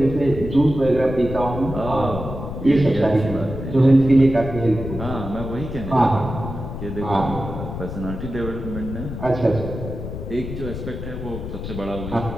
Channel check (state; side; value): noise; left; rumble, 7 dB below the sound